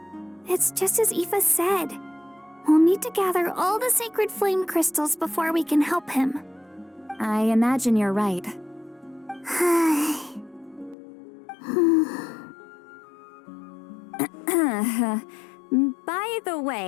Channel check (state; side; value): drops out; right; at 11.0 s